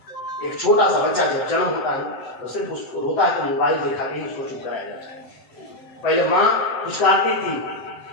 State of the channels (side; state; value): right; late; 7.8 ms